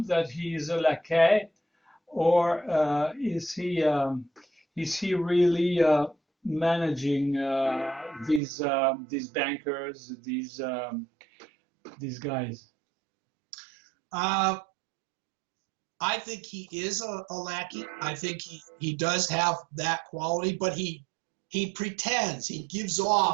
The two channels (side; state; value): left; drops out; at 8.4 s